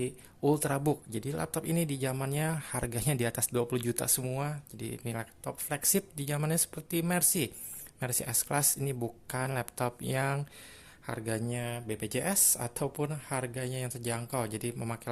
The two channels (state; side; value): identical; both; correlation 1.00